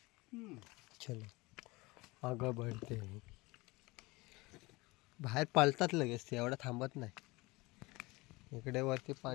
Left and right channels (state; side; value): quieter; right; 22.9 dB